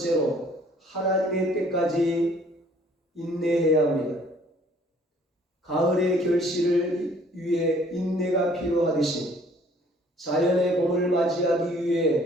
하나님의 때까지 인내해야 합니다. 가을의 결실을 위해 인내가 필요하듯이 자연의 봄을 맞이하기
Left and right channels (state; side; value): normal; both; correlation 0.58